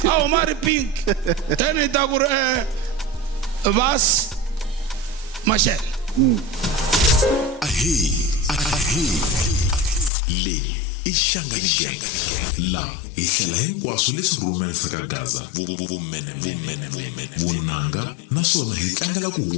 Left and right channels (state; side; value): drops out; right; at 10.1 s